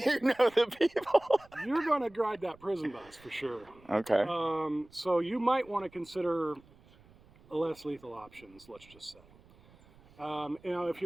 know the people. You're going to ride that prison bus for sure. Okay. So you might want to consider less lethal options, let's just say. You know, if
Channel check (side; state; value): right; noise; rumble, 26 dB below the sound